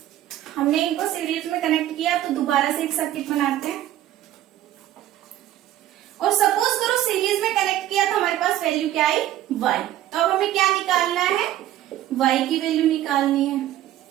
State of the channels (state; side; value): quieter; left; 13.1 dB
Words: हमने इनको सीरीज में कनेक्ट किया तो दोबारा से एक सर्किट बनाते हैं। और सपोज करो सीरीज में कनेक्ट किया तो हमारे पास वैल्यू क्या आई y। तो अब हमें क्या निकालना है, y की वैल्यू निकालनी है।